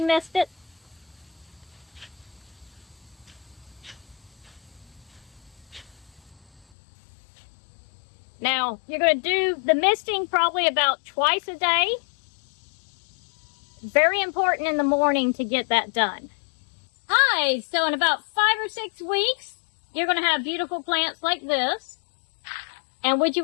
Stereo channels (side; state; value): right; drops out; at 6.7 s